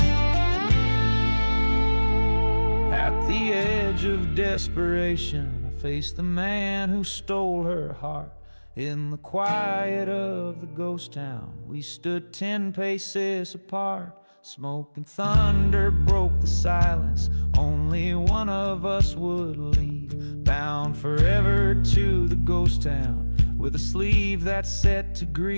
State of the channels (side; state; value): both; inverted; correlation -1.00